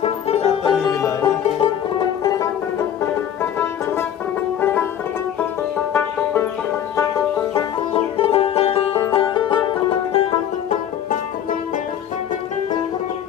এত নিবিলা নাকি?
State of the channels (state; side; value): quieter; right; 9.8 dB